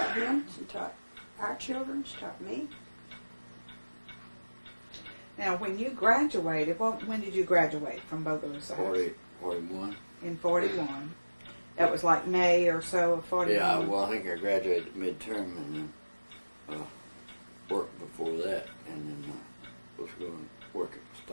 him. She taught our children. She taught me. Now, when you graduated, when did you graduate from Bogalusa? 41. In 41. That was like May or so of 41. Yeah, well, I think I graduated midterm and then worked before that, and then was going to work at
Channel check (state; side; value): inverted; both; correlation -1.00